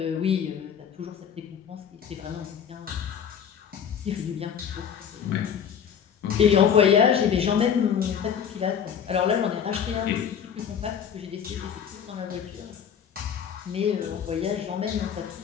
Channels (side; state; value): right; quieter; 8.0 dB